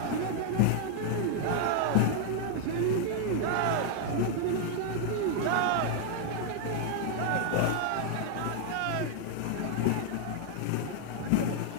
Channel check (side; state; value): both; different; correlation 0.00